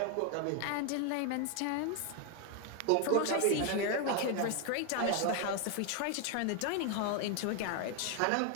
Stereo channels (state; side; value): different; both; correlation 0.00